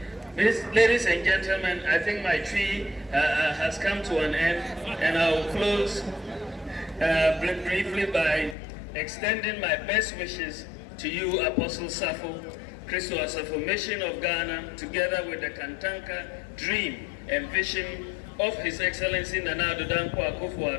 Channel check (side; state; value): right; drops out; at 8.6 s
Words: ladies and gentlemen, I think my tree has come to an end, and I'll close briefly by extending my best wishes to you, Apostle Safo Christo Asafo, Mission of Ghana, together with the Kantanka dream and vision of His Excellency Nana Addo Dankwa